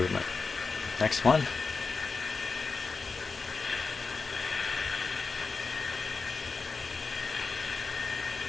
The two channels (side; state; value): right; quieter; 4.5 dB